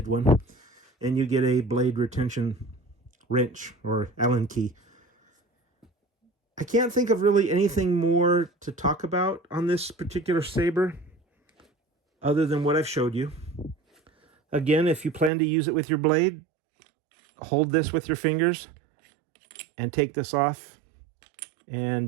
one. And you get a blade retention wrench or Allen key. I can't think of really anything more to talk about on this particular saber other than what I've showed you. Again, if you plan to use it with your blade, hold this with your fingers and take this off, and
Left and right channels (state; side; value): drops out; left; at 15.3 s